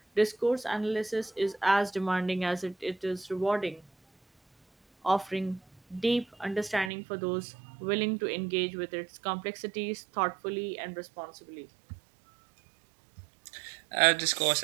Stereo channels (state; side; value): drops out; left; at 6.9 s